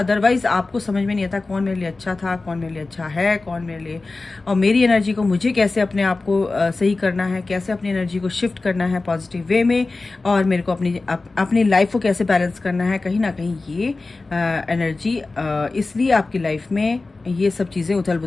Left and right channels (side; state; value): right; quieter; 3.5 dB